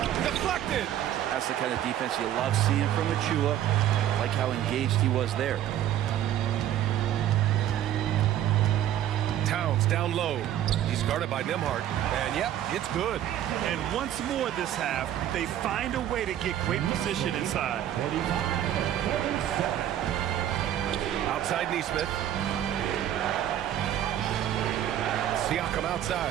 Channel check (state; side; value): quieter; left; 11.5 dB